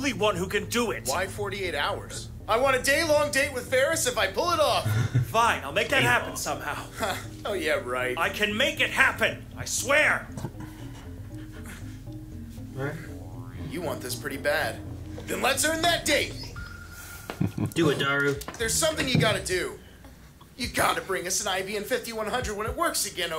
one who can do it. Why 48 hours? I want a day-long date with Ferris if I pull it off. Fine, I'll make that happen somehow. Oh, yeah, right. I can make it happen. I swear. You want this pretty bad. Then let's earn that date. Do it, Daru. There's something you gotta do. You gotta bring us an IBM 5100 when it works again,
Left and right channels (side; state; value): both; identical; correlation 1.00